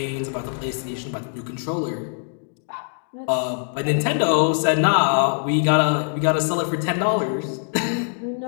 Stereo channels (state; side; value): silent; right; digital silence